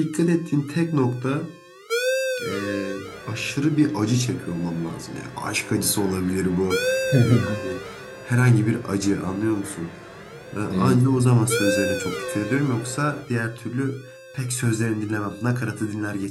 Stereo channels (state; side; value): identical; both; correlation 1.00